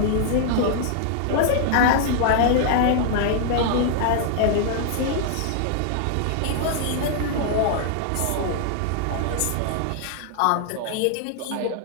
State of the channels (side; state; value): both; different; correlation -0.01